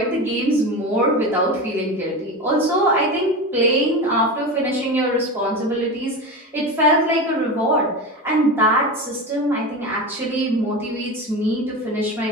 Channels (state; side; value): normal; both; correlation 0.24